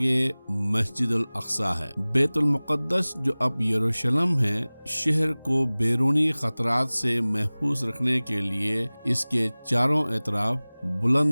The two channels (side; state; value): both; inverted; correlation -1.00